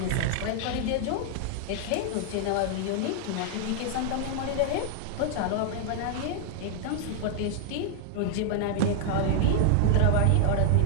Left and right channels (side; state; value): both; different; correlation 0.00